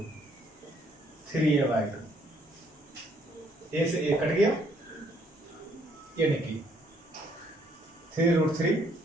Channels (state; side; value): normal; both; correlation 0.66